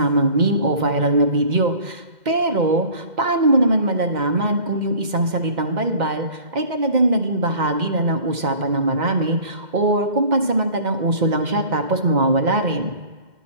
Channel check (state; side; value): late; left; 2.1 ms